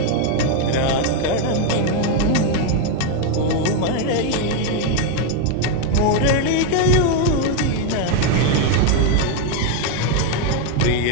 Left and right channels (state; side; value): different; both; correlation 0.01